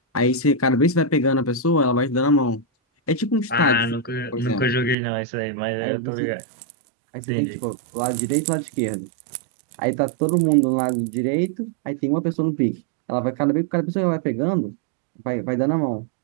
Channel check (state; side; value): drops out; left; at 5.0 s